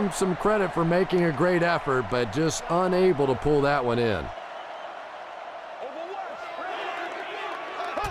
some credit for making a great effort, but just unable to pull that one in.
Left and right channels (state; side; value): identical; both; correlation 1.00